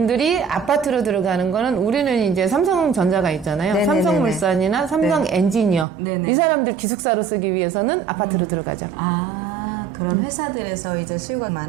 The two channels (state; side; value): drops out; left; at 5.9 s